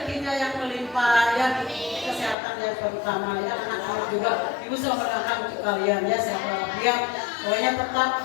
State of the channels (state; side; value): drops out; right; at 2.4 s